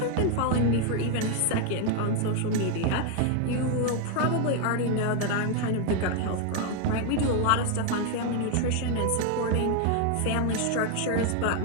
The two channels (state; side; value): different; both; correlation 0.01